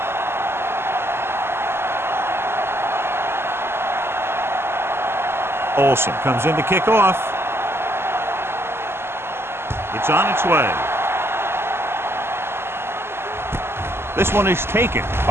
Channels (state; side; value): late; left; 0.12 ms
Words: Olsen comes in to kick off. It's on its way. This one is taken